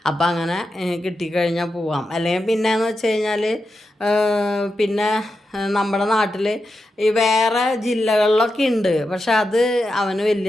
അപ്പം അങ്ങനെ കിട്ടിക്കഴിഞ്ഞാൽ പോവാം. അല്ലെങ്കിൽ പിന്നെയെന്ന് വെച്ച് കഴിഞ്ഞാൽ പിന്നെ നമ്മുടെ നാട്ടിൽ ഈ വേറെ ജില്ലകളിലൊക്കെ ഉണ്ട്. പക്ഷെ അത് അവന്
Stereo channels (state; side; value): normal; both; correlation 0.88